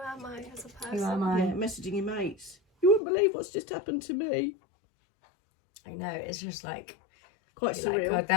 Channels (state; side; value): drops out; right; at 3.0 s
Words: I as a person? who am I? Yeah, messaging your mates. You wouldn't believe what's just happened to me. I know, it's just like, Quite like surreal. God,